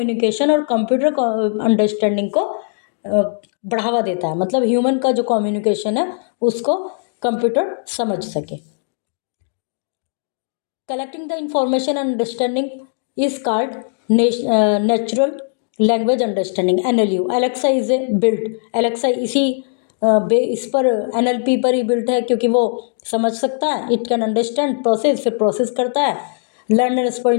और कंप्यूटर अंडरस्टैंडिंग को बढ़ावा देता है. मतलब ह्यूमन का जो कम्युनिकेशन है उसको कंप्यूटर समझ सके. Collecting the information and understanding is called natural language understanding NLU. Alexa is a built. Alexa इस पर NLP पर ही बिल्ट है क्योंकि वो समझ सकता है. इट कैन अंडरस्टैंड, प्रोसेस, फिर प्रोसेस करता है, learn and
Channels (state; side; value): silent; right; 67 dB below the other